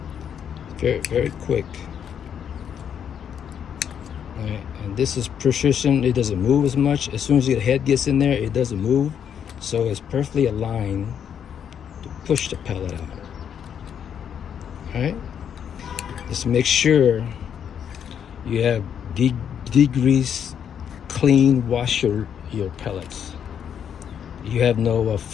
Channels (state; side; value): quieter; right; 8.4 dB